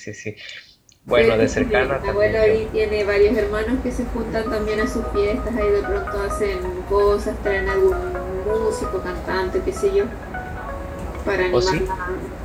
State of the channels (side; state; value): both; identical; correlation 1.00